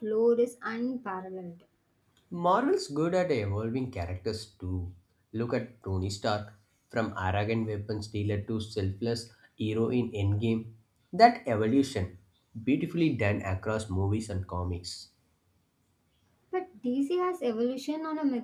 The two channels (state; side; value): identical; both; correlation 1.00